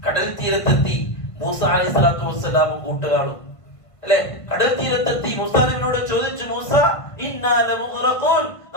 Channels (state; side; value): late; right; 1.5 ms